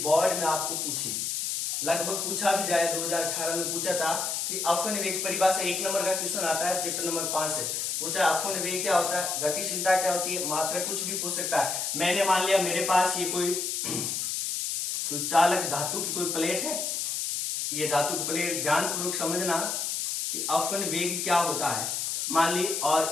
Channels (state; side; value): noise; left; hiss, 1 dB below the sound